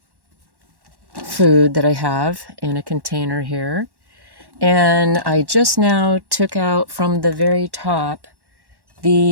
food that I have in a container here. And I just now took out from the very top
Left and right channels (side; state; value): left; late; 1.1 ms